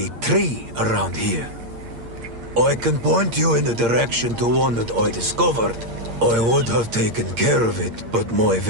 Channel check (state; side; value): late; left; 8.6 ms